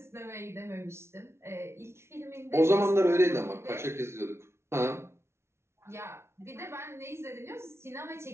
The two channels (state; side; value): late; left; 0.13 ms